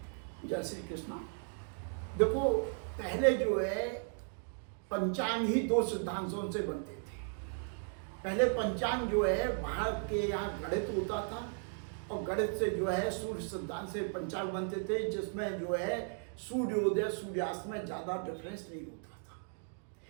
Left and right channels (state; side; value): silent; left; 54 dB below the other